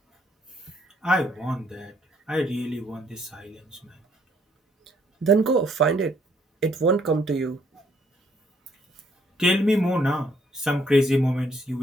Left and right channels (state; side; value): normal; both; correlation 0.67